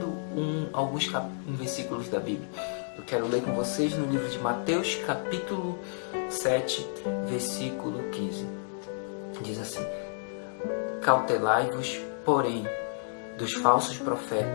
alguns versículos da Bíblia. Eu quero ler com vocês no livro de Mateus, capítulo 7, versículo 15. Diz assim: Cautelai-vos, porém, dos falsos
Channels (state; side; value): silent; right; digital silence